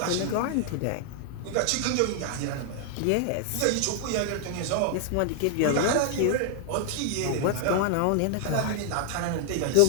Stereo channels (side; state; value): both; different; correlation 0.00